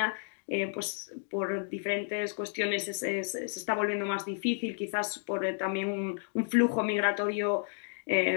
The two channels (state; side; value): silent; right; digital silence